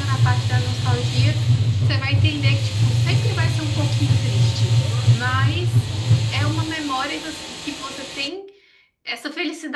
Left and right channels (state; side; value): identical; both; correlation 1.00